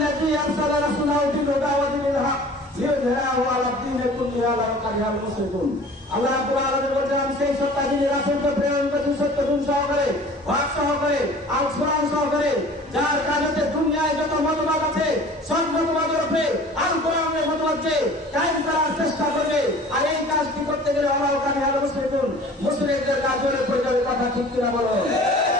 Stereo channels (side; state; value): both; normal; correlation 0.45